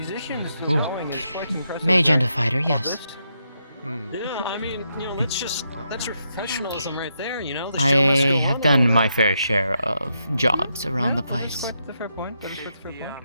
Ooh. going is quite impressive. mage and a fighter, yes. Yeah, I mean, that's professionalism right there, you know. The show I must go have on. done my fair share of jobs around the place. That's a fair point. That is quite a fair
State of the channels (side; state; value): both; inverted; correlation -0.81